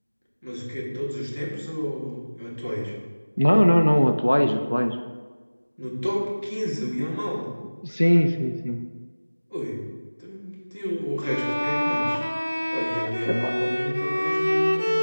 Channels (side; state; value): both; inverted; correlation -1.00